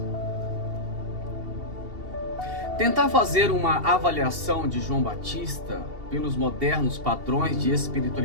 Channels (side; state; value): left; late; 2.7 ms